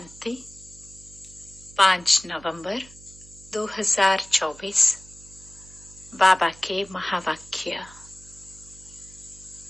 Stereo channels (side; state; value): right; noise; hum, 21 dB below the sound